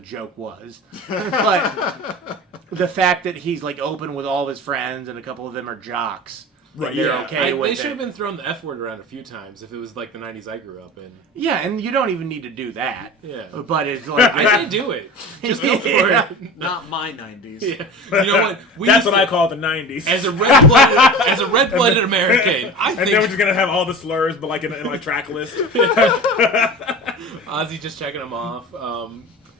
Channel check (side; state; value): both; normal; correlation 0.34